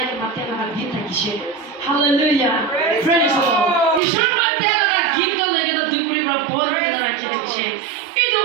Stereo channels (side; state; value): left; drops out; at 4.0 s